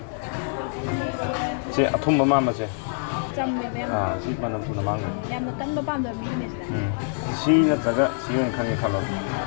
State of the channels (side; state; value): right; silent; digital silence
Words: Say a tomb mamma. Si manam tu namang. Yam kan ba pam da business da. Si na taga si yung kani kalo.